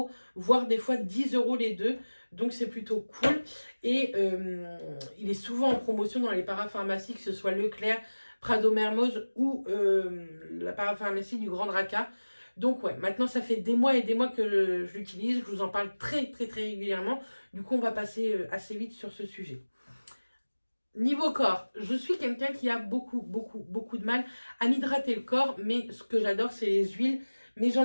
voire des fois 10 € les deux. Donc, c'est plutôt cool. Et il est souvent en promotion dans les parapharmacies, que ce soit Leclerc, Prado Mermoz ou la parapharmacie du Grand Draca. Donc ouais, maintenant ça fait des mois et des mois que je l'utilise, je vous en parle très régulièrement. Du coup, on va passer assez vite sur ce sujet. Niveau corps, je suis quelqu'un qui a beaucoup de mal à m'hydrater le corps, mais ce que j'adore, c'est les huiles. Mais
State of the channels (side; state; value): both; inverted; correlation -1.00